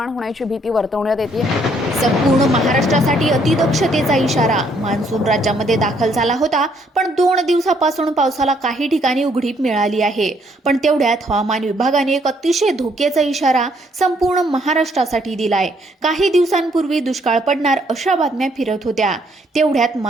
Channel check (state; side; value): normal; both; correlation 0.68